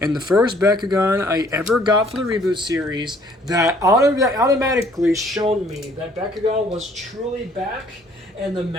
the first Bakugan I ever got for the reboot series that automatically showed me that Bakugan was truly back, and the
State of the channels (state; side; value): normal; both; correlation 0.60